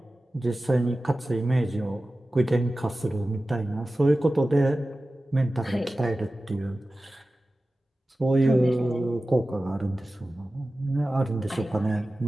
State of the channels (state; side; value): normal; both; correlation 0.95